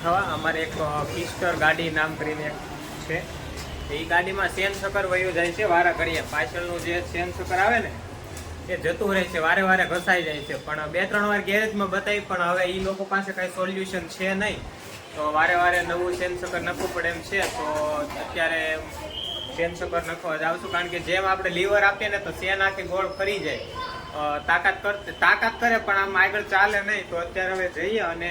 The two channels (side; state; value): both; identical; correlation 1.00